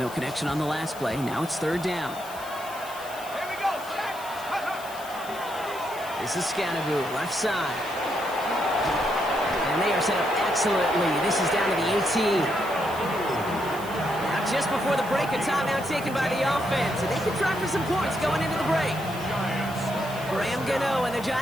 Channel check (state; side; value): noise; left; hiss, 16 dB below the sound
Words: connection on the last play. Now it's 3rd down. Here we go. This is Scanaboo, left side. And they are set up excellently. This is down to the 18. Just before the break, a timeout taken by the offense, and they can try for some points going into the break. Graham Gano and the